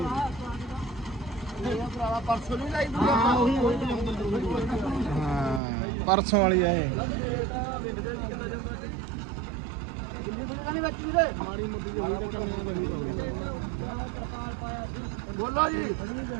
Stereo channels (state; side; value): drops out; left; at 5.6 s